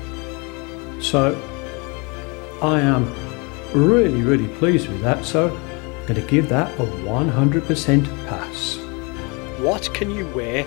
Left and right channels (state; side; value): quieter; right; 30.1 dB